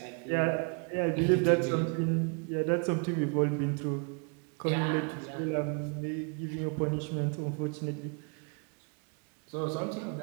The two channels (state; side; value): quieter; left; 38.8 dB